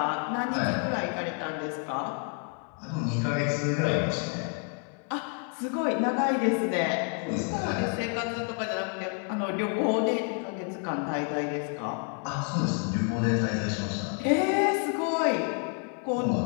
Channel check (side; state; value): right; quieter; 39.4 dB